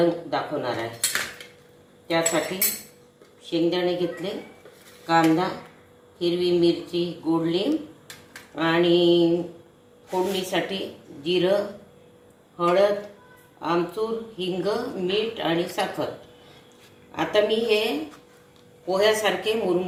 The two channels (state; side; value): identical; both; correlation 1.00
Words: दाखवणार आहे। त्यासाठी शेंगदाणे घेतले, कांदा, हिरवी मिरची, गोड लिंब आणि फोडणीसाठी जिरं, हळद, आमचूर, हिंग, मीठ आणि साखर। आता मी हे पोह्यासारखे